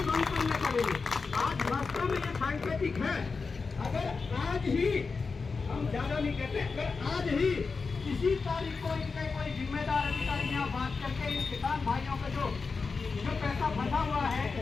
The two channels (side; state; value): right; quieter; 4.6 dB